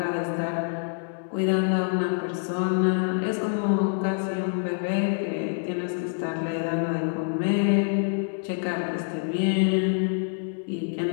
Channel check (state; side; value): silent; right; 61 dB below the other